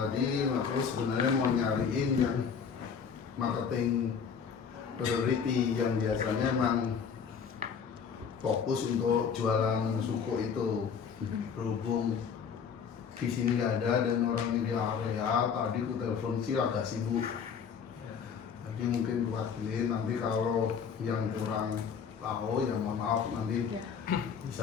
aku sebenarnya mau nyariin yang marketing priority yang biasanya emang fokus untuk jualan suku itu. Berhubung di sini nggak ada dan orangnya di area, tadi aku telepon sih agak sibuk. Jadi mungkin wakilin, nanti kalau yang kurang tahu ya mohon maaf, nanti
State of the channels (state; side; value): quieter; right; 6.7 dB